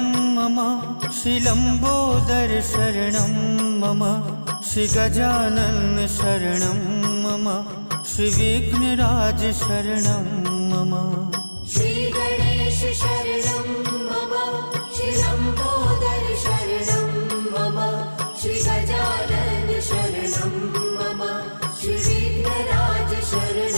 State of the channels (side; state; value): both; inverted; correlation -1.00